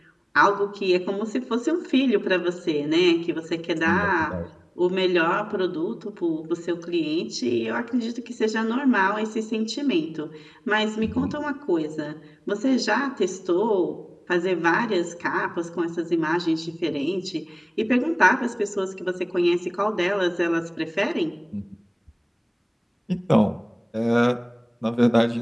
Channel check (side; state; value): both; identical; correlation 1.00